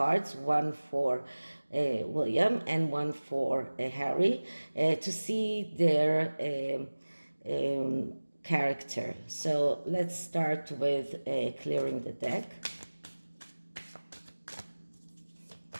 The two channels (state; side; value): inverted; both; correlation -1.00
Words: one for William and one for Harry, to see their character. So let's start with clearing the deck.